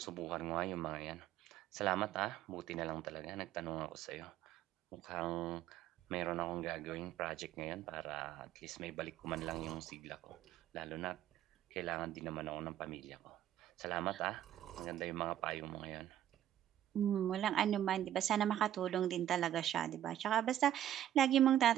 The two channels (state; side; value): quieter; left; 11.7 dB